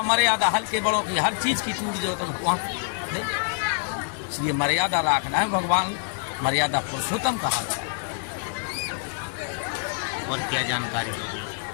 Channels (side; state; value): right; silent; digital silence